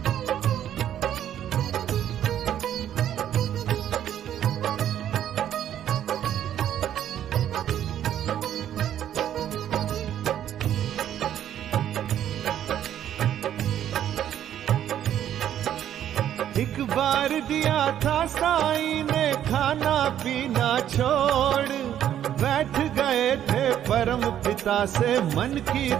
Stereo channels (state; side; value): quieter; left; 10.7 dB